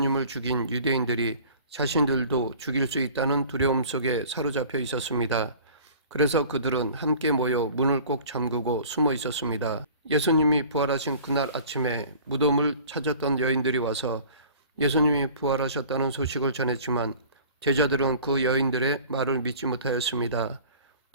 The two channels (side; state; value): both; inverted; correlation -0.46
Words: 죽인 유대인들이 자신들도 죽일 수 있다는 두려움 속에 사로잡혀 있었습니다. 그래서 그들은 함께 모여 문을 꼭 잠그고 숨어 있었습니다. 예수님이 부활하신 그날 아침에 무덤을 찾았던 여인들이 와서 예수님이 부활하셨다는 소식을 전했지만 제자들은 그 여인들의 말을 믿지 못하였습니다.